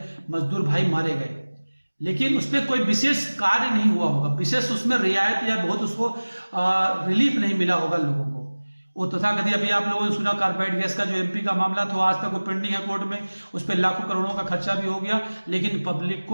मजदूर भाई मारे गए, लेकिन उस पर कोई विशेष कार्य नहीं हुआ होगा, विशेष उसमें रियायत या बहुत उसको रिलीफ नहीं मिला होगा लोगों को। वो तथाकथित अभी आप लोगों ने सुना कार्बाइड गैस का जो एमपी का मामला था, आज तक वो पेंडिंग है कोर्ट में, उस पर लाखों करोड़ों का खर्चा भी हो गया, लेकिन पब्लिक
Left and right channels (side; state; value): both; inverted; correlation -1.00